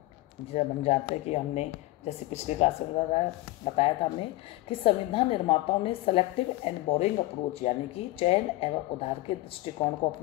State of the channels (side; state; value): right; quieter; 18.8 dB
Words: जब हम जानते हैं कि हमने जैसे पिछली क्लास में बताया था हमने कि संविधान निर्माताओं ने सेलेक्टिव एंड बोरिंग अप्रोच, यानी कि चयन एवं उधार के दृष्टिकोण को